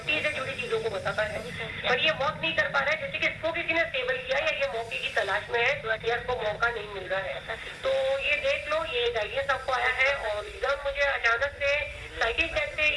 से जुड़ी चीजों को बताता है, पर ये वर्क नहीं कर पा रहा है। जैसे कि इसको किसी ने स्टेबल किया या ये मौके की तलाश में है, या इसको मौका नहीं मिल रहा है। तो ये देख लो, ये गाइडेंस आपको आया है। और एकदम मुझे अचानक से साइकिल टैग से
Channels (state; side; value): identical; both; correlation 1.00